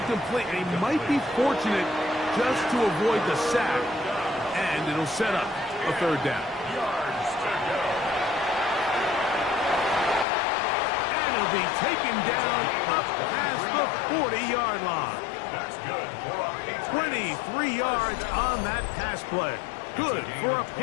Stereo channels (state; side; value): drops out; right; at 10.2 s